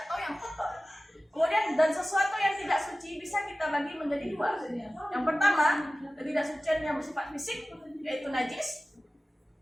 yang kotor. Kemudian dan sesuatu yang tidak suci bisa kita bagi menjadi dua. Yang pertama, ketidaksucian yang bersifat fisik, yaitu najis.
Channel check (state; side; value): normal; both; correlation 0.96